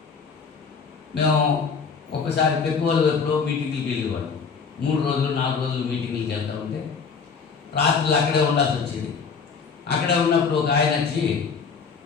మేము ఒకసారి పెక్కువలు ఎప్పుడో మీటింగ్కి వెళ్ళేవాళ్ళం. 3 రోజులు 4 రోజులు మీటింగ్కి వెళ్తూ ఉంటే రాత్రులు అక్కడే ఉండాల్సి వచ్చేది. అక్కడే ఉన్నప్పుడు ఒక ఆయన వచ్చి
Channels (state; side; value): quieter; right; 5.6 dB